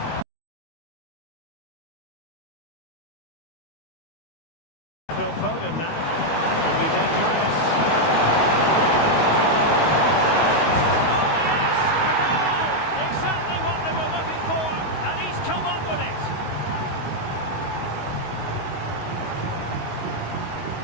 Phil Foden now. Could be dangerous. Oh yes! A goal! Exactly what they were looking for, and he's come up with it.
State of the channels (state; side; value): late; right; 19 ms